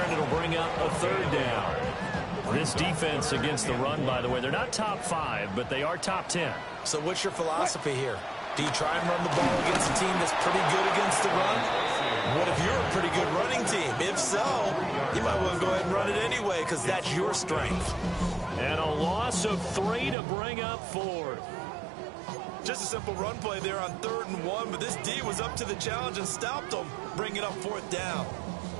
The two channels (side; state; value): left; drops out; at 20.2 s